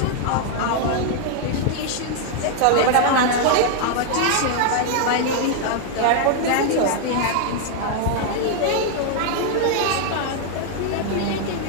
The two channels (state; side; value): different; both; correlation 0.00